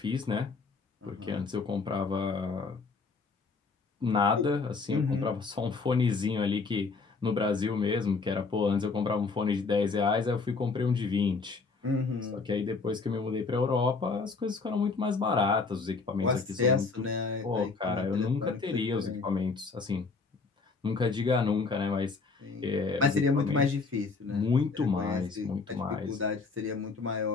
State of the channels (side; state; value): right; quieter; 4.3 dB